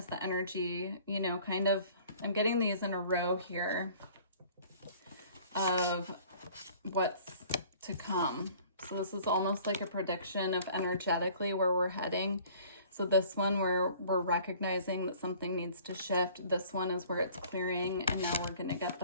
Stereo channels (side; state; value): both; inverted; correlation -0.51